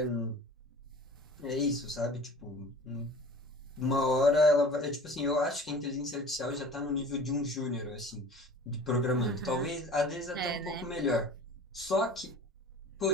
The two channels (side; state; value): both; normal; correlation 0.42